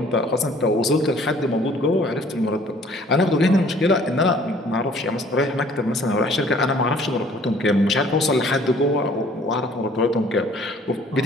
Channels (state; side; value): normal; both; correlation 0.56